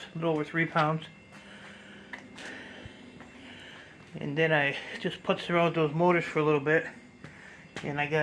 a little over 3 pounds. And then I just putzed around with those motors for a little bit, and I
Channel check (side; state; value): both; identical; correlation 1.00